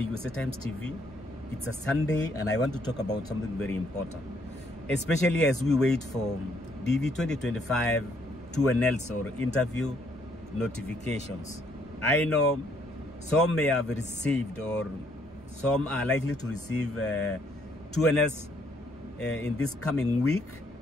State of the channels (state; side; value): normal; both; correlation 0.68